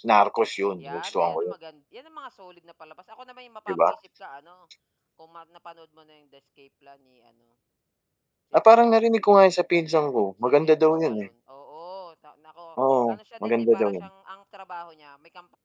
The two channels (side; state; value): both; identical; correlation 1.00